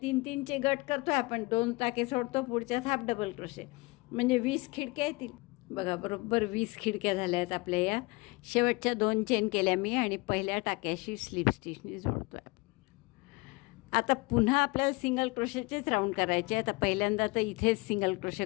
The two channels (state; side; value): quieter; right; 25.4 dB